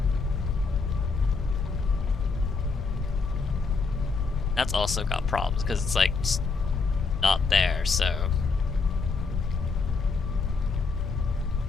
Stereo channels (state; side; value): quieter; right; 4.5 dB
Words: That's also got problems because it's like just not there, so.